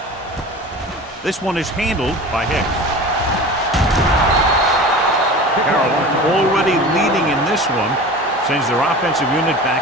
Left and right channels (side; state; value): both; normal; correlation 0.36